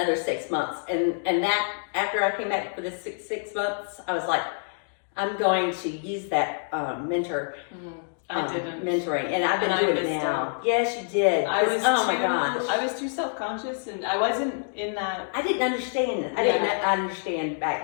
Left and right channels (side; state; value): right; silent; digital silence